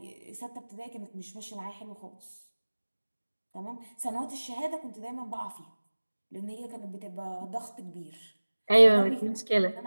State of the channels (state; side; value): inverted; both; correlation -1.00